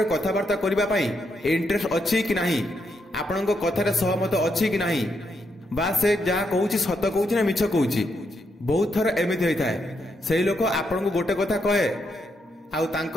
कथावार्ता करिबा पई इंटरेस्ट अछि कि नाही आपण कथारे सहमत अछि कि नाही बा से जहा कहूछि सत कहूछि ना मिछ कहूछि। बहुत थर एमिति होई थाए सेही लोक आपण को गोटे कथा कहे आउ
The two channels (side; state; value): both; normal; correlation 0.79